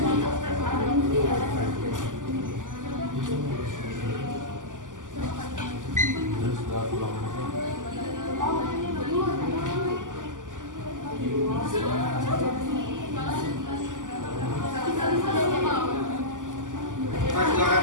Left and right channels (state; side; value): late; left; 0.87 ms